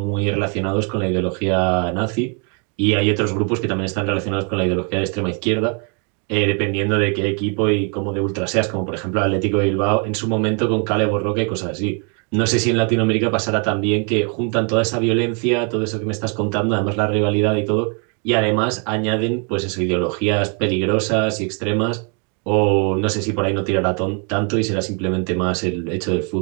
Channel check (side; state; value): left; quieter; 37.7 dB